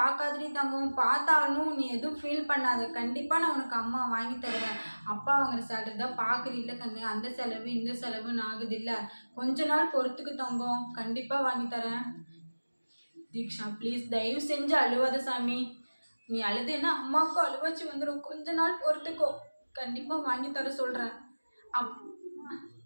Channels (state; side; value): inverted; both; correlation -1.00